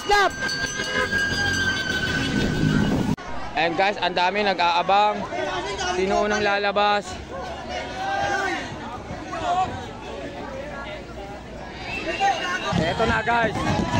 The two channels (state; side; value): identical; both; correlation 1.00